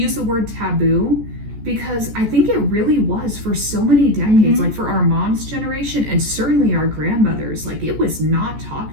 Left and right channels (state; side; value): late; left; 14 ms